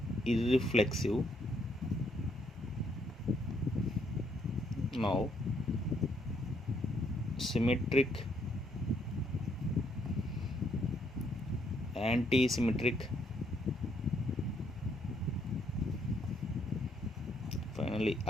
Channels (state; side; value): normal; both; correlation 0.71